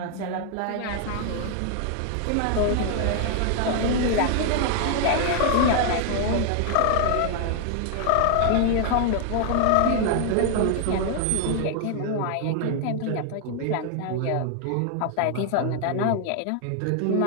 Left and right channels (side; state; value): both; different; correlation 0.00